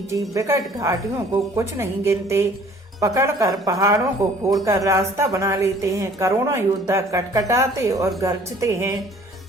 विकट घाटियों को कुछ नहीं गिनते, पकड़कर पहाड़ों को फोड़कर रास्ता बना लेते हैं। करोड़ों योद्धा कटकटाते और गरजते हैं,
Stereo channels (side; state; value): both; normal; correlation 0.53